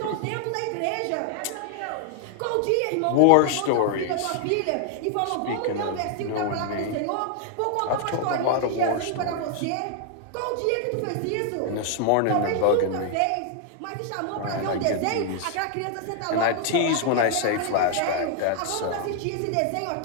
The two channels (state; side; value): different; both; correlation 0.00